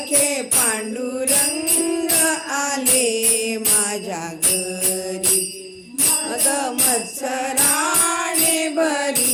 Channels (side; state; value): both; identical; correlation 1.00